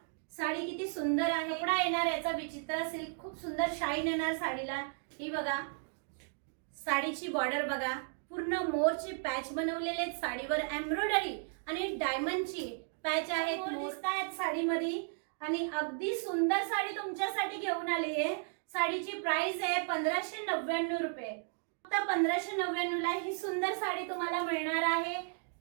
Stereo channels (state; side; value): silent; left; 55 dB below the other